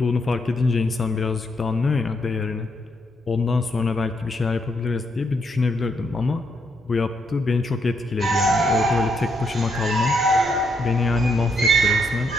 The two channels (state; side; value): normal; both; correlation 0.76